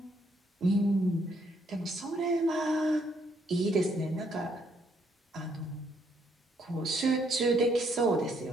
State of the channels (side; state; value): both; normal; correlation 0.71